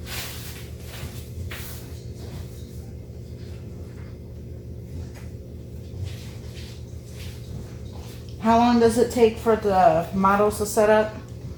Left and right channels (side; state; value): both; identical; correlation 1.00